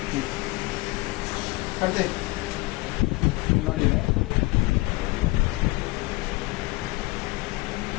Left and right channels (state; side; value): quieter; right; 23.2 dB